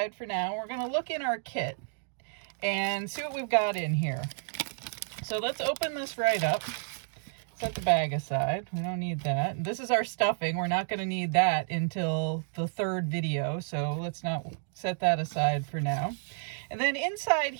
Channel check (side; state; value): left; silent; digital silence